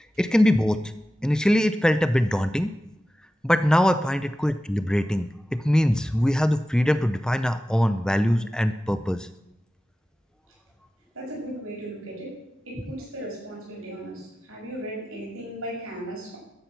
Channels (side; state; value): both; normal; correlation 0.94